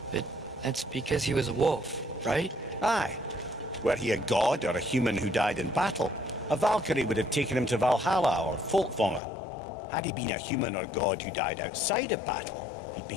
But that's because he was a wolf, right? Aye. Were he a god or a human who died in battle, a Valkyrie would have taken him to Valhalla or Folkvanger. Had he been a human or god who died outside of battle, he'd be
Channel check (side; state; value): right; drops out; at 9.2 s